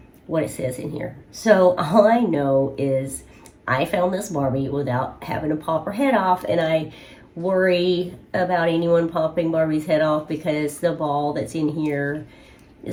what it says in here. So all I know is I found this Barbie without having to pop her head off, and I worry about anyone popping Barbie's head off because the ball that's in here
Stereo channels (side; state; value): both; identical; correlation 1.00